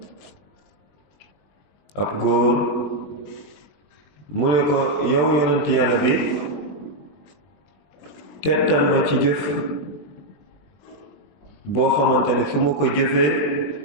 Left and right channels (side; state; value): right; late; 20 ms